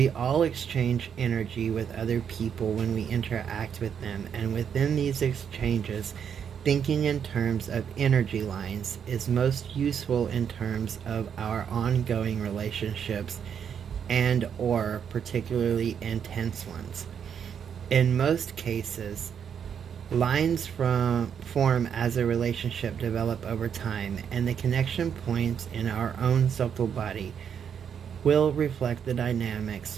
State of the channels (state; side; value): quieter; left; 7.8 dB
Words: all exchange energy with other people when we interact with them, and within these exchanges, thinking in terms of energy lines is most useful in terms of our ongoing relationships and or particularly intense ones. In most cases, lines form as a relationship develop over time, and the connection points in our own subtle body will reflect the